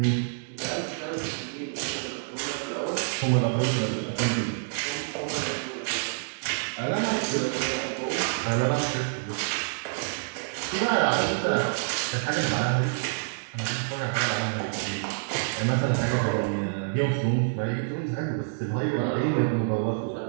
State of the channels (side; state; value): left; silent; digital silence